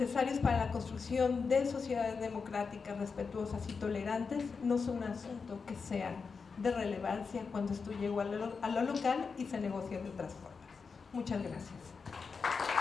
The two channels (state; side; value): quieter; right; 5.2 dB